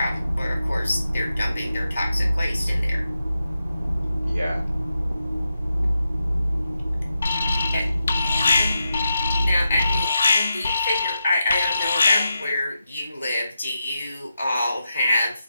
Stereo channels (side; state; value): both; inverted; correlation -0.88